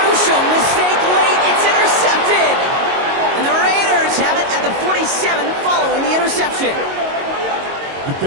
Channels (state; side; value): late; left; 22 ms